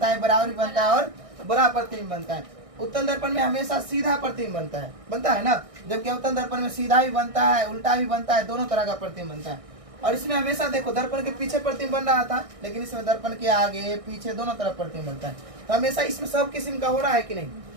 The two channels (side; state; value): left; late; 1.6 ms